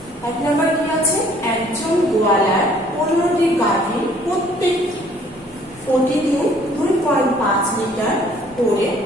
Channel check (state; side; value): normal; both; correlation 0.59